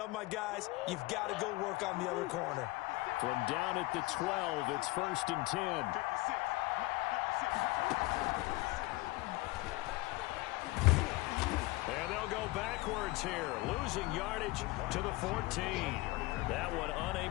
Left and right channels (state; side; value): quieter; right; 21.3 dB